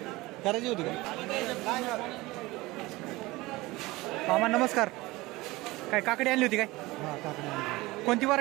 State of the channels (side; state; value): left; quieter; 20.7 dB